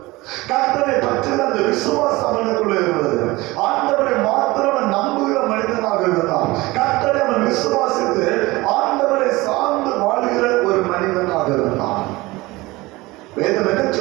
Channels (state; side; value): quieter; left; 21.0 dB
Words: கர்த்தரை பற்றின அந்த விசுவாசம் அவனுக்குள்ள இருந்தது. ஆண்டவரை மாத்திரம் நம்புகிற மனிதனாக இருந்தான். கர்த்தரை அவன் விசுவாசித்து ஆண்டவரை சார்ந்து வாழ்கிற ஒரு மனிதனாக இருந்தான். வேதம் என்ன